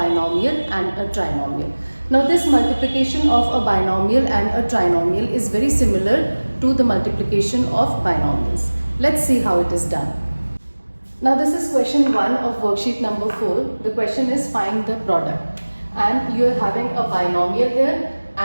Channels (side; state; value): both; inverted; correlation -1.00